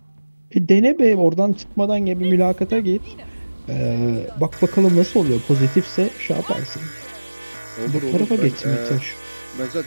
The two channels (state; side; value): inverted; both; correlation -1.00